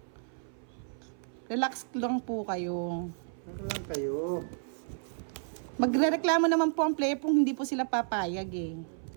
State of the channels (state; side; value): silent; left; 57 dB below the other